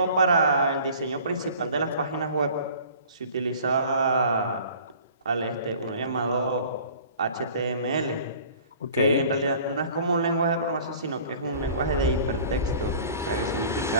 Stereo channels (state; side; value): inverted; both; correlation -0.47